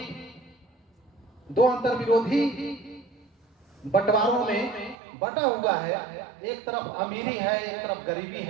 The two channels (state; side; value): drops out; left; at 5.0 s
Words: बंटवारों में बटा हुआ है। एक तरफ अमीरी है, एक तरफ गरीबी